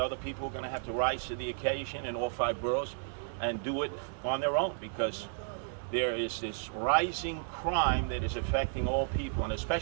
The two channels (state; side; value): silent; left; 56 dB below the other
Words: people are going to have to rise to the occasion in all 5 boroughs and do it on their own, because there is this rising crime that is affecting all people, and